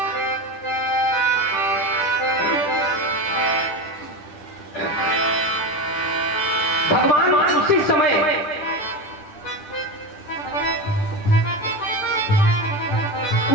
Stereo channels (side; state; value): right; late; 10 ms